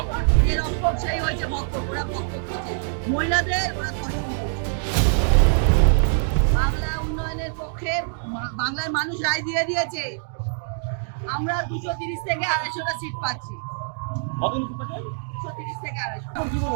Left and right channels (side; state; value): left; silent; digital silence